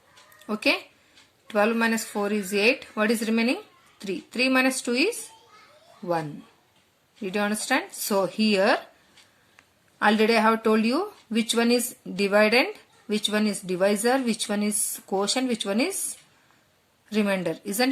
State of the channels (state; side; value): identical; both; correlation 1.00